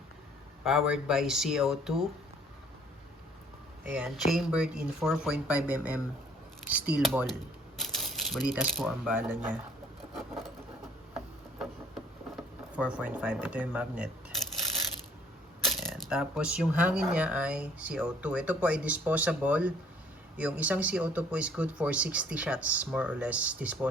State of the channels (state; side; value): normal; both; correlation 0.58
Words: Powered by CO2. Ayan, chambered in 4.5mm steel ball. Balitas po ang bala niya. 4.5. Ito yung magnet. Ayan. Tapos yung hangin niya ay CO2. Ito po ay disposable. Yung isang CO2 po is good for 60 shots. More or less